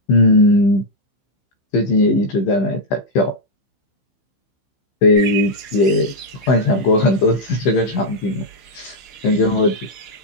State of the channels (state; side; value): late; right; 15 ms